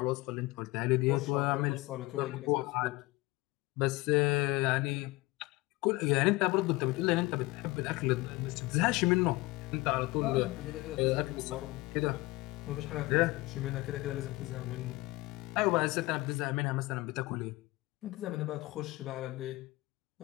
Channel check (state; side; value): quieter; right; 21.4 dB